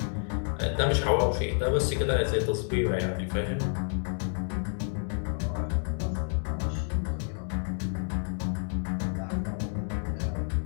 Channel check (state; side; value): silent; right; 58 dB below the other